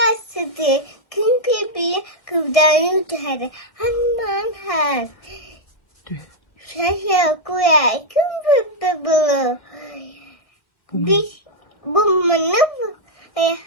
sidi kim pipi kıvdan yutarı haman ha şaşa kuya kim pipi bulu bir bu mana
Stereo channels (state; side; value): late; right; 1.8 ms